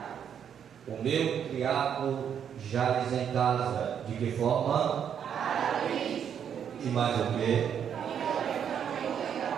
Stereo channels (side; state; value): left; quieter; 8.4 dB